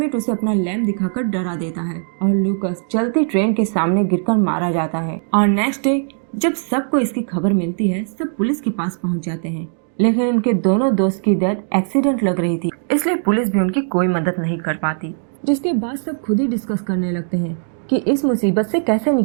उसे अपना लैंप दिखाकर डरा देता है और लूकस चलती ट्रेन के सामने गिरकर मारा जाता है। और नेक्स्ट डे जब सबको इसकी खबर मिलती है, सब पुलिस के पास पहुंच जाते हैं, लेकिन उनके दोनों दोस्त की डेथ एक्सीडेंट लग रही थी, इसलिए पुलिस भी उनकी कोई मदद नहीं कर पाती। जिसके बाद सब खुद ही डिस्कस करने लगते हैं कि इस मुसीबत से कैसे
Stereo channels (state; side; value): silent; left; digital silence